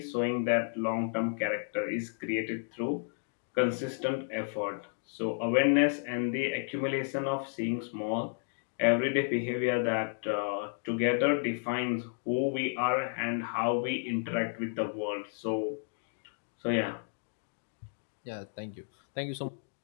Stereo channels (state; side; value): silent; right; digital silence